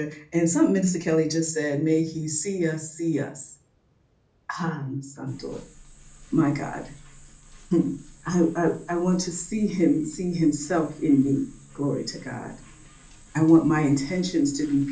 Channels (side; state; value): both; identical; correlation 1.00